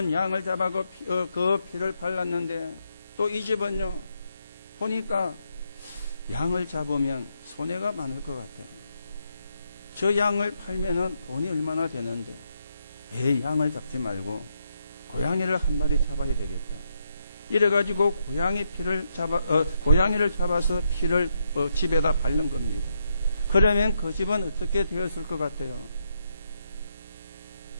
양을 잡아서 그 피를 발랐는데 또 이 집은요 보니까 양을 잡으면 손해가 많을 것 같아. 저 양을 팔면은 돈이 얼마나 되는데 왜 양을 잡지 말고 고양이를 한 마리 잡아야 되겠다. 이래가지고 고양이를 잡아서 피를 집에다 바른 겁니다. 그러면 그 집은 어떻게 되었을 것 같아요?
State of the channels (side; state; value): both; inverted; correlation -0.80